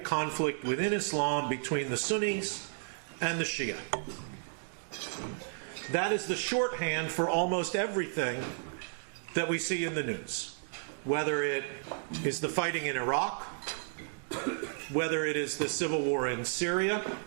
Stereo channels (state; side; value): silent; left; digital silence